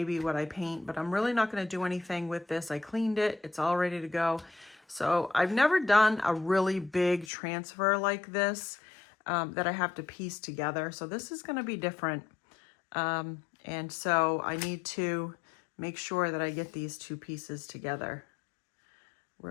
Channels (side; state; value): right; drops out; at 7.3 s